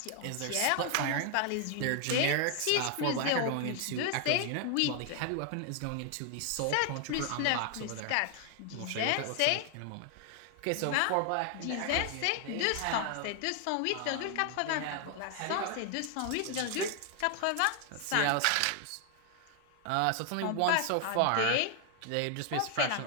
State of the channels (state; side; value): different; both; correlation 0.00